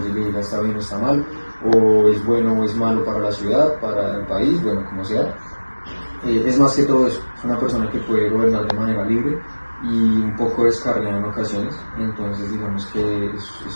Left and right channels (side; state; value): both; inverted; correlation -1.00